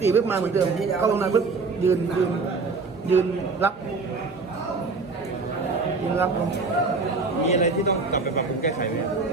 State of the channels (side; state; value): left; quieter; 4.1 dB